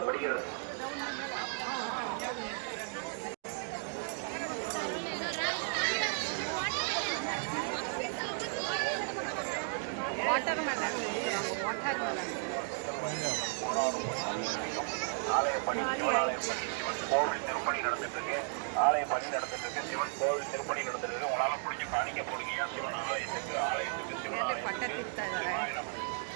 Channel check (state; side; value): silent; left; 55 dB below the other